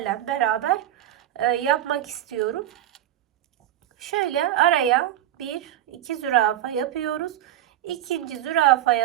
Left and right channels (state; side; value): quieter; left; 12.3 dB